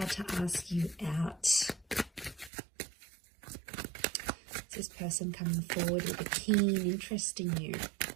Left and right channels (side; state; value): left; drops out; at 2.5 s